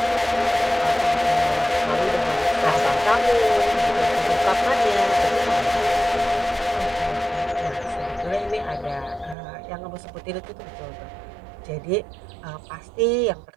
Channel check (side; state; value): left; drops out; at 9.3 s